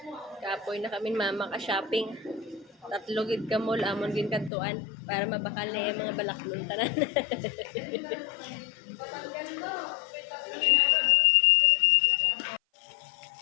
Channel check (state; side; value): drops out; right; at 4.5 s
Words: Kapoy na kami mama ka shopping. Tatlo gid ka mall amon gin kantuan para mabakal na yung mga balaklon tanan.